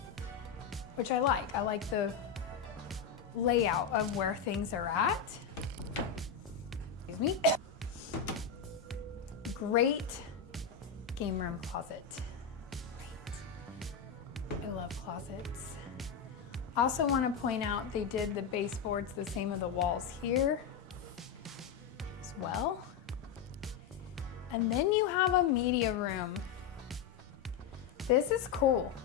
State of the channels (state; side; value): quieter; right; 7.0 dB